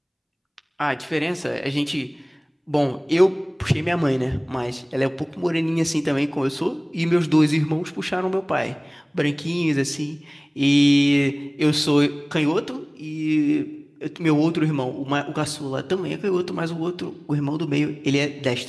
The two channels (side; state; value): both; identical; correlation 1.00